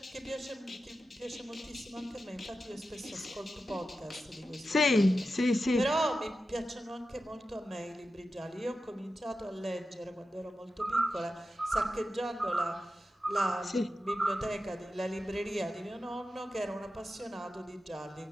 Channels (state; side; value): normal; both; correlation 0.92